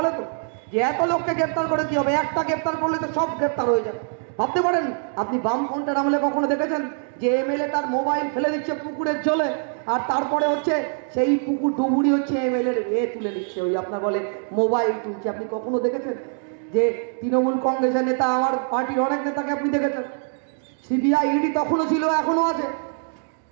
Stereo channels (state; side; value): silent; left; 60 dB below the other